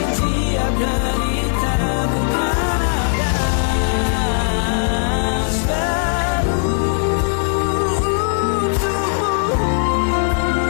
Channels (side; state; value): right; silent; 67 dB below the other